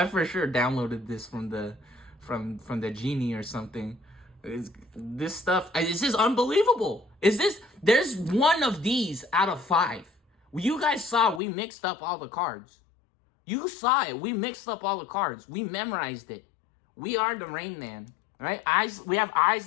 for sure downloaded this from the genie or something. This stuff, this is unbelievable. There's one of these out of 5. You guys saw we mixed up all the cards. You saw it. We mixed up all the cards. We memorized it. We are the Rain Man. Right? Eyes. We have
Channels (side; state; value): right; drops out; at 11.4 s